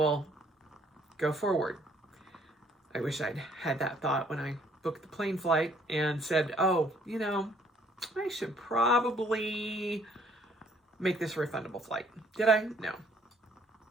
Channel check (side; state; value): both; normal; correlation 0.63